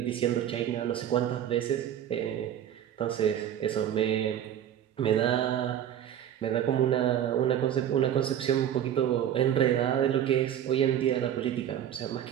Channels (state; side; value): quieter; left; 10.3 dB